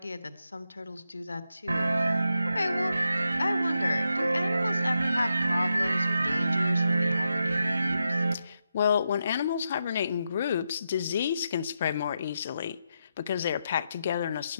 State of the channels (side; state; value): both; inverted; correlation -0.85